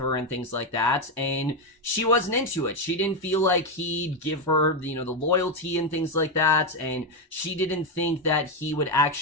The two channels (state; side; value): normal; both; correlation 0.07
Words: and things like that. And she wasn't into it. She didn't feel like he'd give her, the loyalty and things like that. And she didn't think that he would